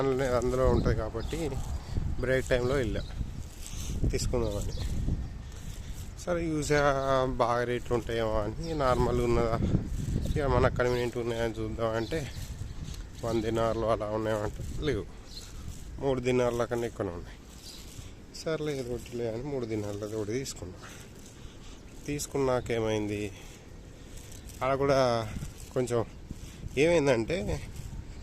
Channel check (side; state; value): both; identical; correlation 1.00